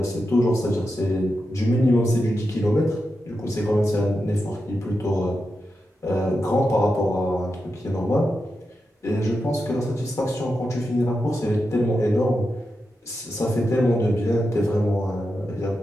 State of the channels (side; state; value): both; normal; correlation 0.88